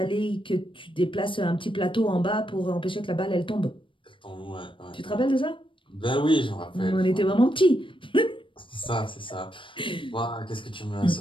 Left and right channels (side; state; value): right; late; 0.25 ms